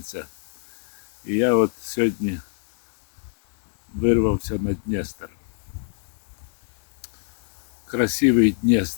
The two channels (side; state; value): right; silent; digital silence